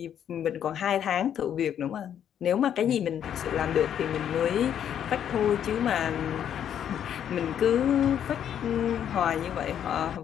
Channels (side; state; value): right; quieter; 9.5 dB